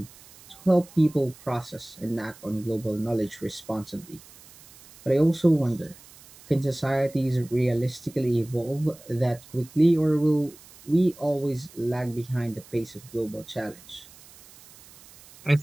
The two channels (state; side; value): noise; right; hiss, 22 dB below the sound